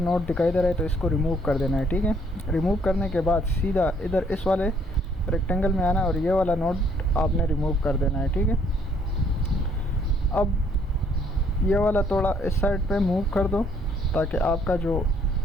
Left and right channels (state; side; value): normal; both; correlation 0.65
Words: दिखाई दे रहा है तो इसको रिमूव कर देना है। ठीक है, रिमूव करने के बाद सीधा इधर इस वाले रेक्टेंगल में आना है और ये वाला नोट आपने रिमूव कर देना है। ठीक है, अब ये वाला थोड़ा इस साइड पे मूव कर दो ताकि आपका जो